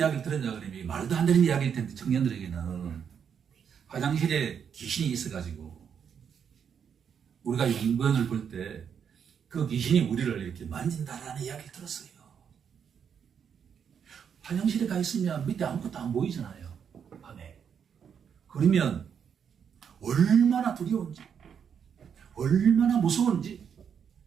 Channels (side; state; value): left; quieter; 7.5 dB